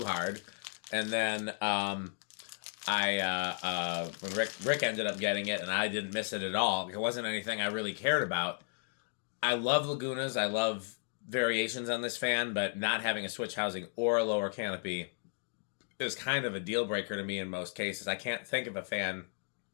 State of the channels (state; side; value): silent; right; digital silence